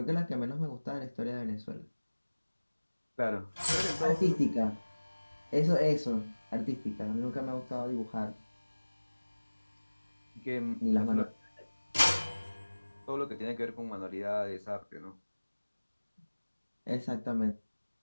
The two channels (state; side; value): inverted; both; correlation -1.00